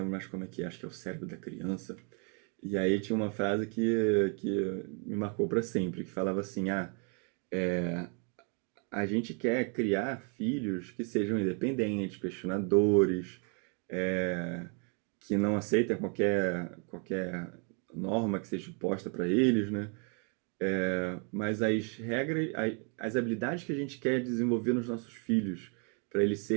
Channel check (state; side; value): quieter; left; 38.3 dB